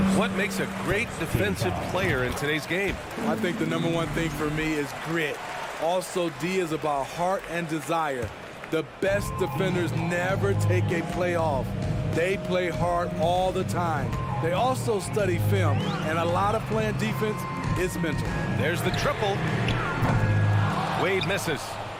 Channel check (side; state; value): both; identical; correlation 1.00